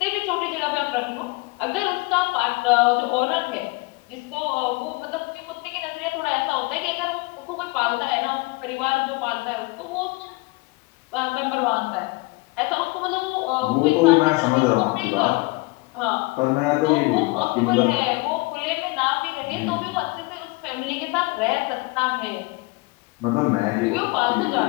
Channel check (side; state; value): right; quieter; 25.2 dB